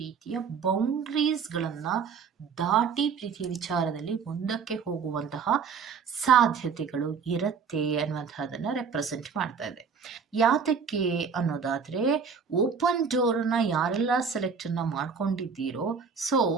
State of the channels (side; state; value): left; quieter; 5.9 dB